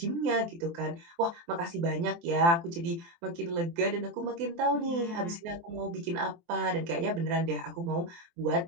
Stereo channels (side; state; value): left; late; 23 ms